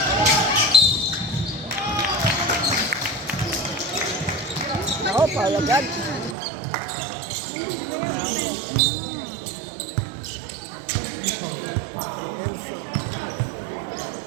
Oh, Paula God.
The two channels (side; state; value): left; drops out; at 6.4 s